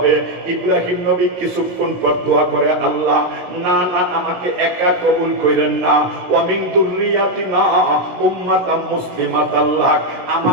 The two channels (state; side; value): late; left; 17 ms